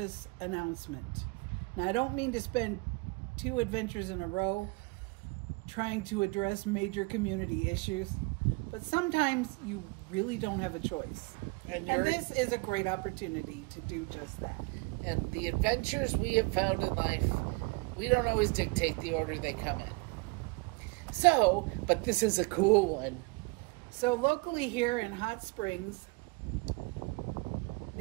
announcement. Now I don't mean to spend two adventures in a row trying to address major community issues, but sometimes you really don't have a choice. And this is a great opportunity to do just that. And the adventures we have found in life, we don't always dictate the order they come in. So, but this is a cool one. So locally here in Hot Springs,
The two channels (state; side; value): quieter; left; 28.0 dB